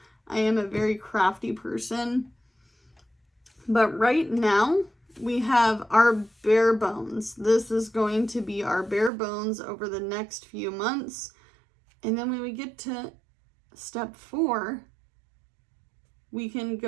I am a very crafty person. But right now, we have our bare bones. This is going to be our bare bones over the next few months. And then when we get to step 4, we can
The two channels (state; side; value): drops out; left; at 9.1 s